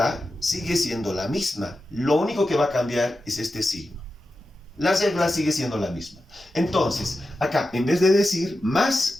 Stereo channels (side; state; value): both; normal; correlation 0.91